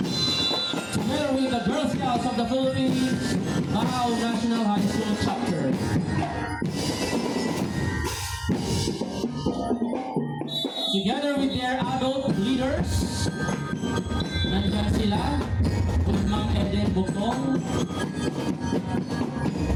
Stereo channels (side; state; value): both; identical; correlation 1.00